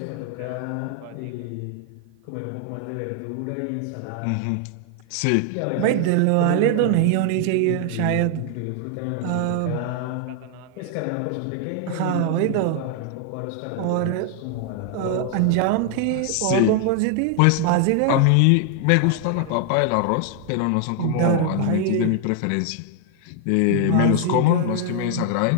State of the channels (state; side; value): different; both; correlation 0.00